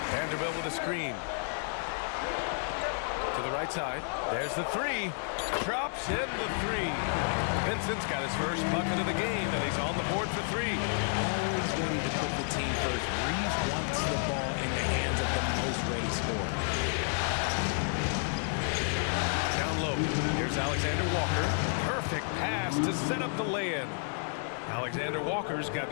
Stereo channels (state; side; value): silent; right; 57 dB below the other